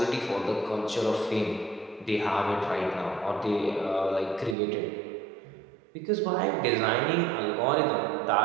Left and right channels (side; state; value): left; drops out; at 4.5 s